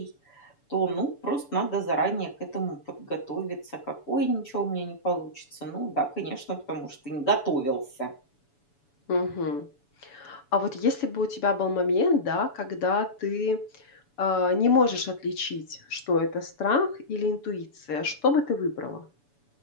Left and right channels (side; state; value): right; late; 7.0 ms